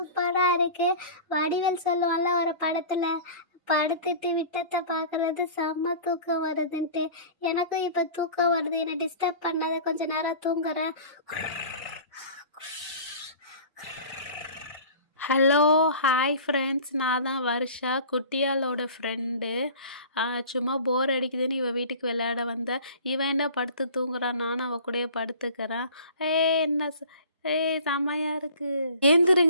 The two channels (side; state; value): both; inverted; correlation -0.41